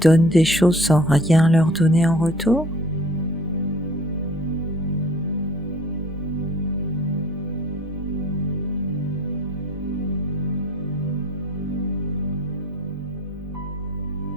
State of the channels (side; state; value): both; normal; correlation 0.51